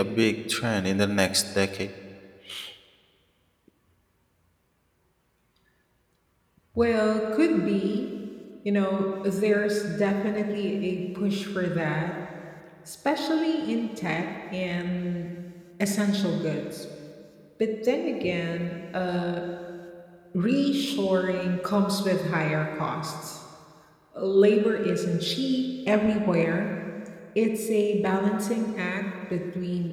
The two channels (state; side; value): identical; both; correlation 1.00